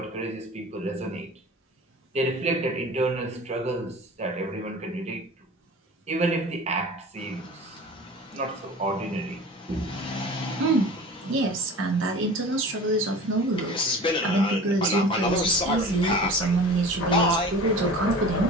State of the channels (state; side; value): normal; both; correlation 0.39